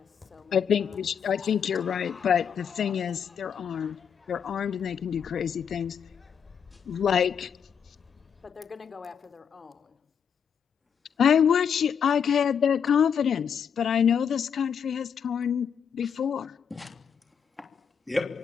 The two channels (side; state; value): right; quieter; 7.4 dB